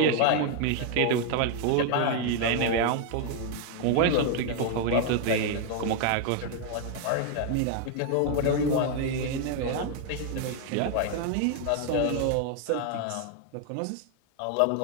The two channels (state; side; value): different; both; correlation 0.00